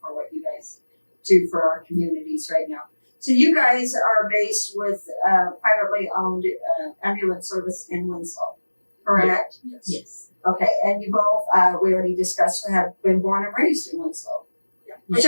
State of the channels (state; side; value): inverted; both; correlation -1.00